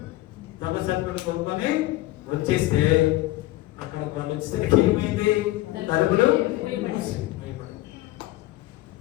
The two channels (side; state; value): right; quieter; 17.5 dB